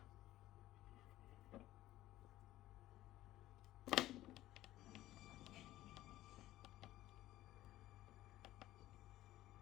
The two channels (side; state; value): right; quieter; 15.2 dB